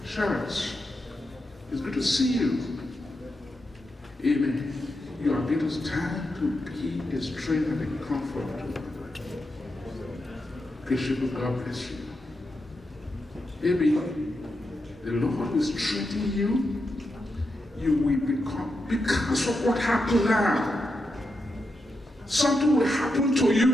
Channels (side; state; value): both; normal; correlation 0.86